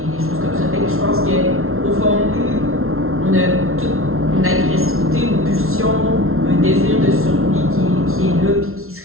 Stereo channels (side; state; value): left; late; 0.62 ms